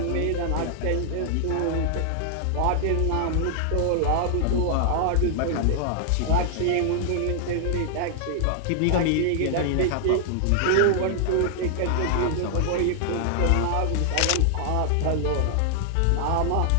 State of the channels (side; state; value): both; different; correlation -0.01